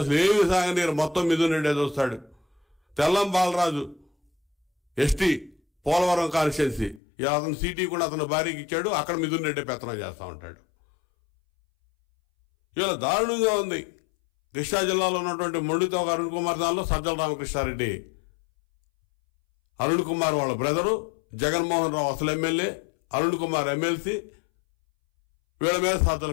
అసలు ఏమి సాగనీరు, మొత్తం మిథున్ రెడ్డి చూస్తాడు. తెల్లం బాలరాజు ఎస్టీ పోలవరం కాన్స్టిట్యున్సీ, అతను సీటీ కూడా అతను భార్యకి ఇచ్చాడు, అక్కడ మిథున్ రెడ్డి పెత్తనం చేస్తూ ఉంటాడు. ఇలా దారుణంగా ఉంది. కృష్ణా జిల్లాలో ఉన్నటువంటి మొండితోక అరుణ్ కుమార్ దానిలో సజ్జల రామకృష్ణారెడ్డి, అరుణ్ కుమార్ వాళ్ళ బ్రదరు, జగన్మోహన్ రావు అసలు ఎమ్మెల్యే, అరుణ్ కుమార్ ఎమ్మెల్సీ, వీళ్ళ మీద సజ్జల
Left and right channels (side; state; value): right; drops out; at 7.0 s